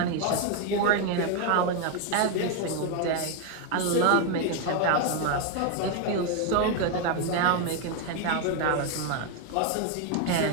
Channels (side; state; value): both; different; correlation 0.01